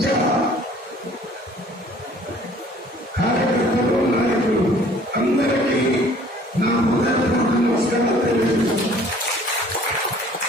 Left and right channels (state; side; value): normal; both; correlation 0.54